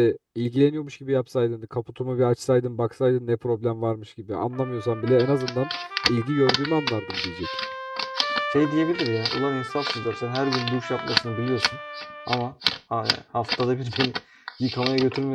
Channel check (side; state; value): both; identical; correlation 1.00